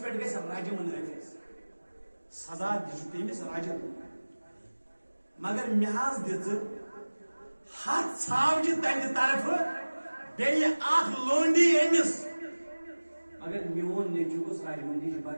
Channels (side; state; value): both; inverted; correlation -1.00